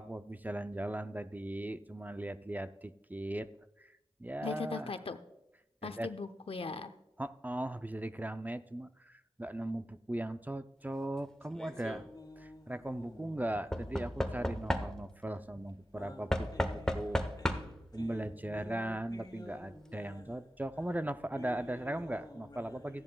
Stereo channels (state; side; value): normal; both; correlation 0.92